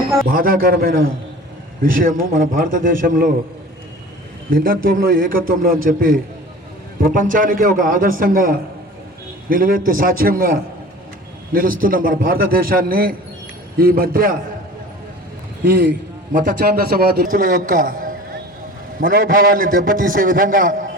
బాధాకరమైన విషయము మన భారతదేశంలో భిన్నత్వంలో ఏకత్వంలో అని చెప్పి ప్రపంచానికే ఒక ఆదర్శంగా నిలువెత్తి సాక్ష్యంగా నిలుస్తున్న మన భారతదేశాన్ని ఈ మధ్య ఈ మత ఛాందసవాదుల యొక్క మనోభావాన్ని దెబ్బతీసే విధంగా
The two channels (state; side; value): normal; both; correlation 0.41